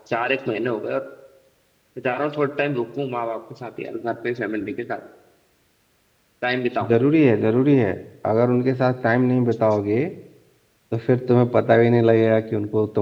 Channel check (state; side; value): identical; both; correlation 1.00